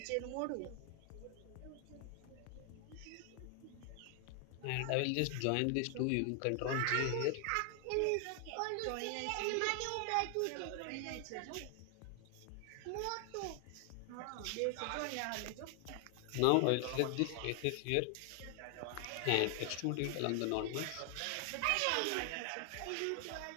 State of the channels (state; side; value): different; both; correlation 0.00